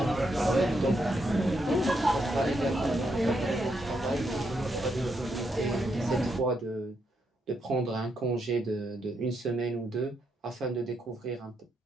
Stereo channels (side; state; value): both; normal; correlation 0.80